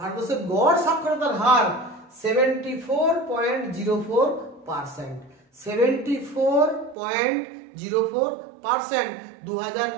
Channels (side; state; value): left; drops out; at 7.0 s